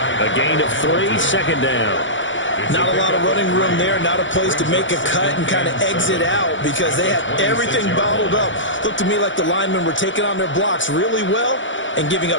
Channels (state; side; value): late; right; 0.56 ms